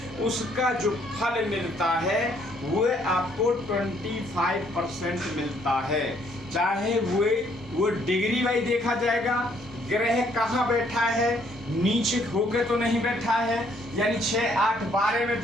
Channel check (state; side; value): normal; both; correlation 0.66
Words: उसका जो फल मिलता है वो आपको 25% मिलता है। चाहे वो डिग्री वाइज देखा जाएगा, ग्रह कहाँ बैठा है, नीचे होके तो नहीं बैठा है, यानी 6, 8, 12 में